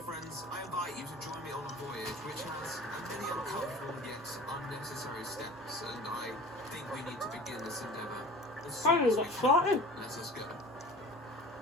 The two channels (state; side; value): normal; both; correlation 0.41